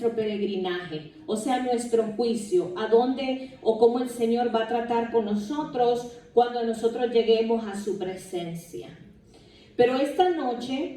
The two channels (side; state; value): both; identical; correlation 1.00